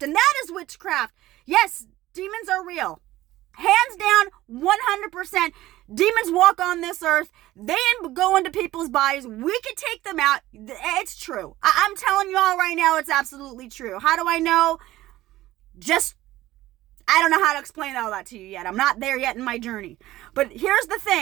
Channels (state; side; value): quieter; left; 16.0 dB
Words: and that is witchcraft. Yes, demons are real. Hands down, 100%. Demons walk on this earth. They go into people's bodies. We can take them out. It's true. I'm telling you all right now, it's absolutely true. How do I know? I don't know how to explain all that to you yet. I'm not there yet in my journey. But here's the